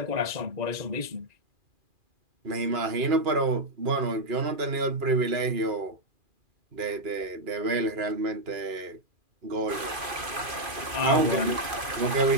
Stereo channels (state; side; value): late; left; 2.5 ms